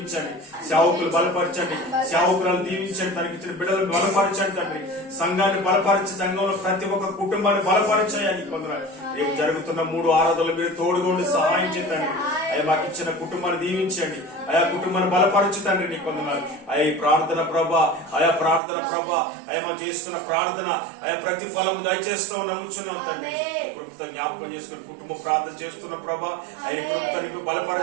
సేవకులు బలపరచండి, సేవకులను దీవించండి. తనకి ఇచ్చిన బిడ్డలను బలపరచండి తండ్రి. సంఘాన్ని బలపరిచి సంఘంలో ప్రతి ఒక్క కుటుంబాన్ని బలపరచాయని కొందరు రేపు జరుగుతున్న 3 ఆరాధనలు మీరు తోడుగా ఉండి సహాయం చేయండి అయ్యా. మాకు ఇచ్చిన కుటుంబాన్ని దీవించండి అయా. కుటుంబాన్ని బలపరచుతండి. నీకు వందనాలు అయ్యా. ఈ ప్రార్థన ప్రభా అయా. ప్రార్థన ప్రభా అయ్యా. మనం చేస్తున్న ప్రార్థన అయా ప్రతిఫలం దయచేస్తాం నమ్ముచున్నాం తండ్రి. కృపతో జ్ఞాపకం చేసుకుని కుటుంబ ప్రార్థన చేస్తున్న ప్రభా ఆయన కృపతో నింపి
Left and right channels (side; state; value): left; drops out; at 18.6 s